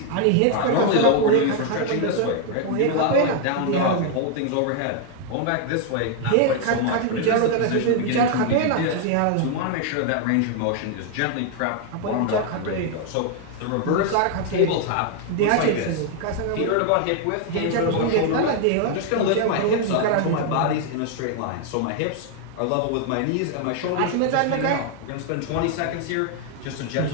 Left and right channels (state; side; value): different; both; correlation 0.00